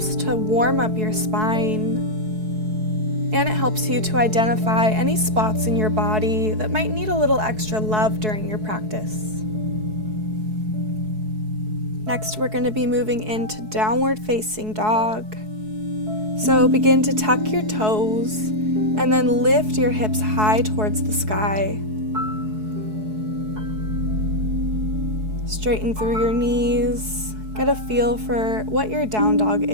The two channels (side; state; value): left; late; 4.7 ms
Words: to warm up your spine, and it helps you to identify any spots in your body that might need a little extra love during your practice. Next, we're going to be moving into downward facing dog. So begin to tuck your toes and then lift your hips high towards the sky. Straighten through your knees. Get a feel for what your down dog